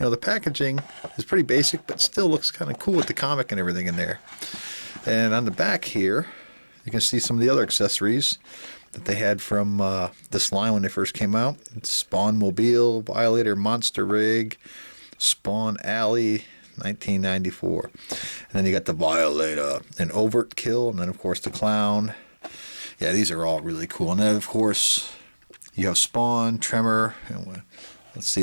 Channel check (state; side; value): inverted; both; correlation -1.00